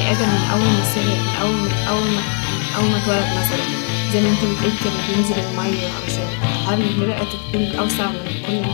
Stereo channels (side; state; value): right; quieter; 38.0 dB